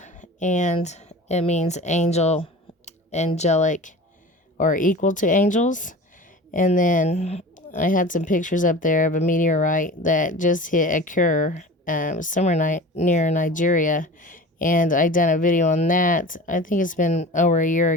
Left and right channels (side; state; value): both; normal; correlation 0.37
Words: and it means angel, angelic, or equal to angels. And then I had some pictures up there of a meteorite that just hit occur somewhere near Nigeria, and I done a video on that. I think it's been over a year